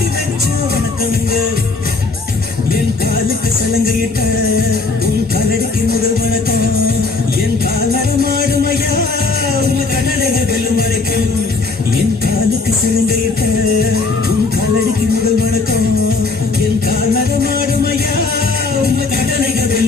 வச்ச வணக்கங்க என் காலுக்கு சலங்கையிட்ட உன் காலடிக்கு முதல் வணக்கம் என் கால் நடமாடும் ஐயா உங்க கடலைக வெல்லும் வரைக்கும் என் காலுக்கு சலங்கையிட்ட உன் காலடிக்கு முதல் வணக்கம் என் கால் நடமாடும் ஐயா உங்க கடலைக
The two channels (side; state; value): right; quieter; 4.0 dB